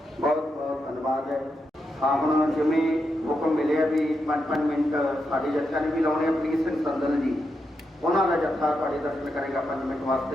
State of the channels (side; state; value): both; normal; correlation 0.84